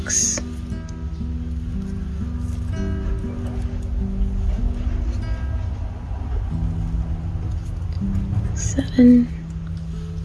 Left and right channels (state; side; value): identical; both; correlation 1.00